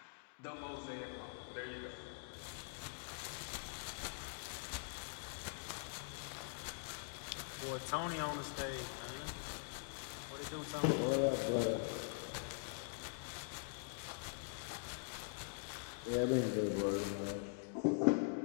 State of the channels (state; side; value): silent; right; digital silence